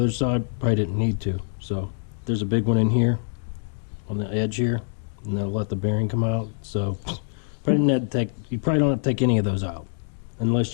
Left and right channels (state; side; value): silent; right; digital silence